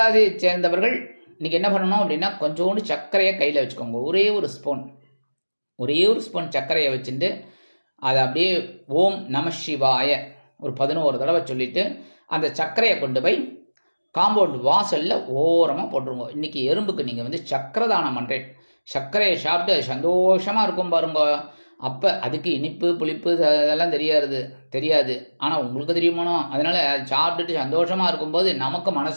சேர்ந்தவர்கள் இன்னைக்கு என்ன பண்ணணும் அப்படின்னா, கொஞ்சோண்டு சர்க்கரையை கையில் வச்சுக்கோங்க. ஒரே ஒரு ஸ்பூன் சர்க்கரையை வச்சுட்டு அதை அப்படியே ஓம் நம சிவாய ஒரு 11 தடவை சொல்லிட்டு அந்த சர்க்கரையை கொண்டு போய் காம்பவுண்ட் வாசலில் ஓரமாக போட்டுருங்க. இன்றைக்கி எறும்புக்கு நீங்கள் சர்க்கரை தானம் பண்ணுறேன். சர்க்கரையை சாப்பிட்டு அது சந்தோஷமாக இருக்கும் பாருங்க. அப்போ அதுக்கு இனிப்பு புளிப்பு அதெல்லாம் தெரியாது. ஆனால் உங்களுக்கு தெரியுமானோ. அதனால் அது சாப்பிட்டுட்டு சந்தோஷமாக இருக்கும்போது நமக்கு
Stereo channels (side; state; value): both; inverted; correlation -1.00